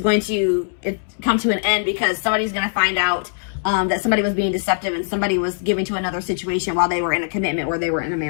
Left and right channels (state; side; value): silent; right; 65 dB below the other